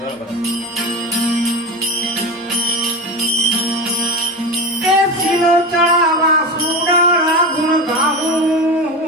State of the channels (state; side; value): normal; both; correlation 0.24